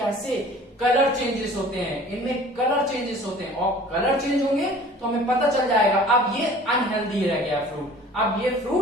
कलर चेंजेस होते हैं, इनमें कलर चेंजेस होते हैं, और कलर चेंज होंगे तो हमें पता चल जाएगा अब ये अनहेल्दी रह गया फ्रूट, अब ये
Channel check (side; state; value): both; normal; correlation 0.47